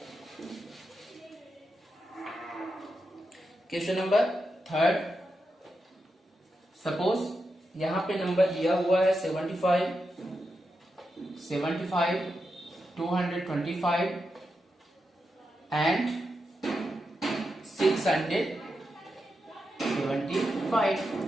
क्वेश्चन नंबर 3, सपोज यहां पे नंबर दिया हुआ है 75 225 एंड 675।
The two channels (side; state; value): both; normal; correlation 0.87